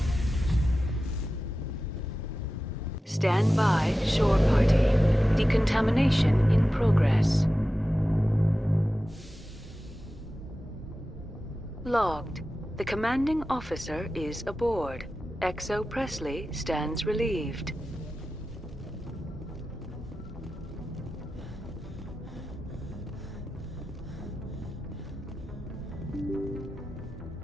Stand by, shore party. Decontamination in progress. Logged. The commanding officer is aboard. XO Presley stands relieved.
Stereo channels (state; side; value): normal; both; correlation 0.94